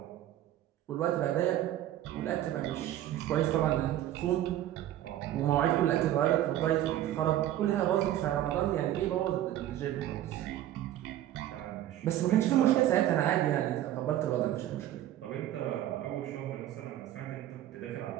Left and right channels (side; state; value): left; quieter; 12.8 dB